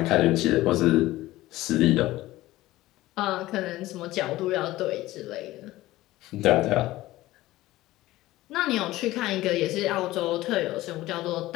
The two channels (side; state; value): right; quieter; 17.0 dB